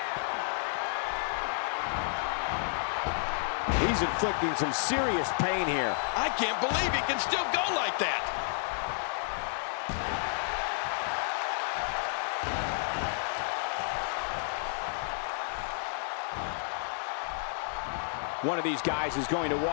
He's inflicting some serious pain here. I can't believe he can still go like that. One of these guys is going to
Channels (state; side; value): silent; right; digital silence